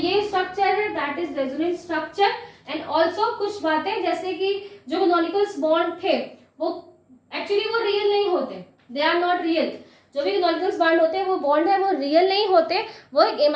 स्ट्रक्चर है that is resonance structure. And also कुछ बातें जैसे कि जो कैनोनिकल बॉन्ड थे वो एक्चुअली वो रियल नहीं होते, दे आर नॉट रियल। जो भी कैनोनिकल बॉन्ड होते हैं वो बॉन्ड है वो रियल नहीं होते, वो एक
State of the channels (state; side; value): identical; both; correlation 1.00